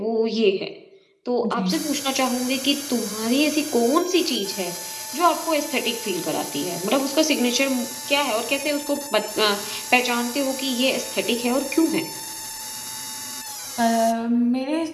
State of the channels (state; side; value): identical; both; correlation 1.00